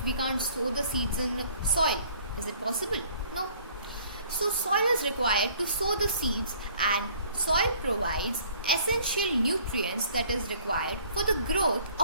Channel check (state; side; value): inverted; both; correlation -0.56